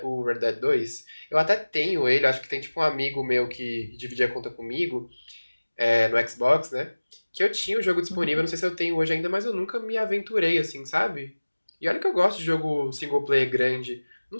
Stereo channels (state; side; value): inverted; both; correlation -1.00